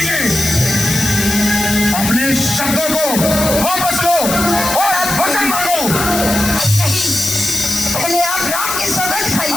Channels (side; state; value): left; noise; hiss, 3 dB below the sound